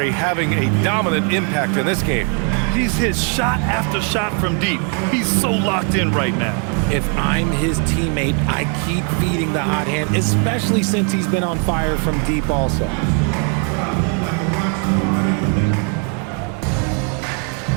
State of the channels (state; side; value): quieter; left; 39.9 dB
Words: having a dominant impact in this game. He's hit shot after shot from deep. He's so locked in right now. If I'm his teammate, I keep feeding the hot hand, especially since he's been on fire from deep also.